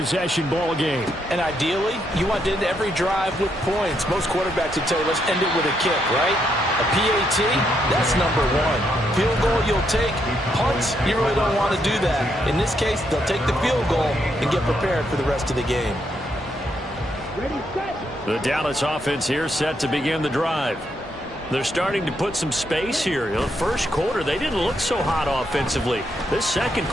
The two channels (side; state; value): both; normal; correlation 0.77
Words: ball game. And ideally, you want to end every drive with points. Most quarterbacks would tell you, let's end it with a kick, right? A PAT, that's number 1. Field goal you'll take. Punts, you really don't want to do that. In this case, they'll take the field goal and get prepared for the rest of the game. The Dallas offense here set to begin the drive. They're starting to put some space here. The first quarter, they didn't look so hot offensively. This second